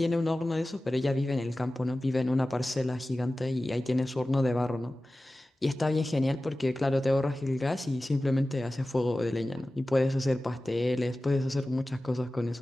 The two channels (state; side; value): normal; both; correlation 0.96